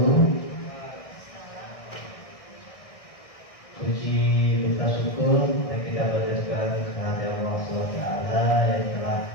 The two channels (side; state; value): right; late; 1.6 ms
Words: Puji kita syukur yang kita berdasarkan kehadiran Allah SWT yang telah